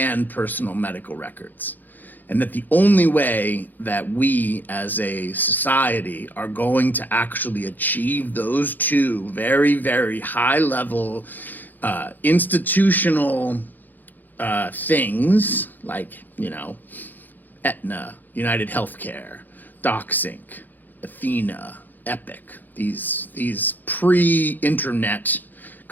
personal medical records. And that the only way that we as a society are going to actually achieve those two very, very high level institutional things like, Aetna, United Healthcare, DocSync, Athena, Epic, these pre-internet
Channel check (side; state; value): right; late; 0.086 ms